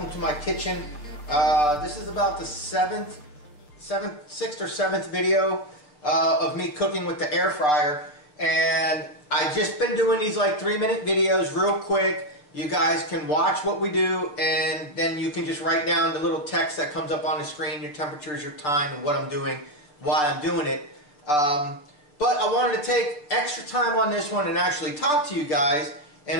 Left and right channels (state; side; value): late; right; 6.8 ms